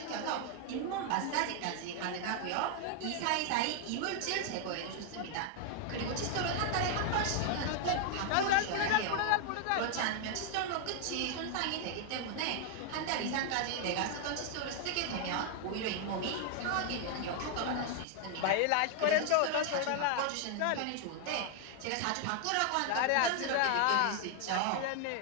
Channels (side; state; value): both; different; correlation 0.00